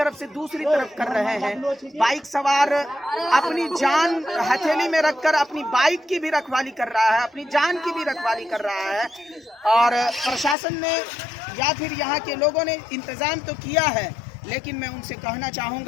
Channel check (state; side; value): drops out; right; at 10.6 s